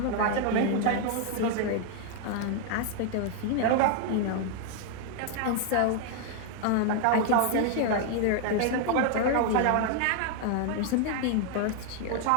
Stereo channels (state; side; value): different; both; correlation 0.00